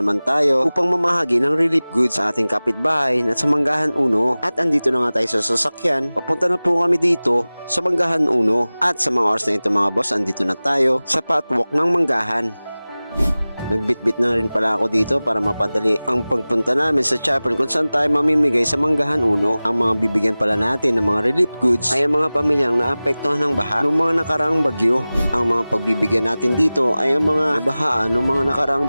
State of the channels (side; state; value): both; inverted; correlation -0.98